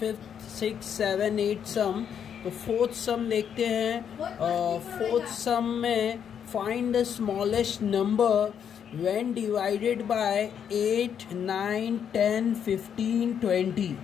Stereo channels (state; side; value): quieter; right; 8.2 dB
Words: 6, 7, 8 sum. तो फोर्थ सम देखते हैं. फोर्थ सम में find the smallest number when divided by 8, 9, 10, 15, 20.